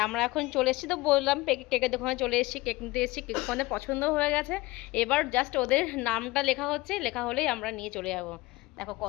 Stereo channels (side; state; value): right; quieter; 20.8 dB